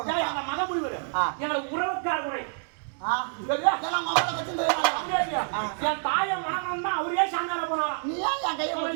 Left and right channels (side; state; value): left; silent; 59 dB below the other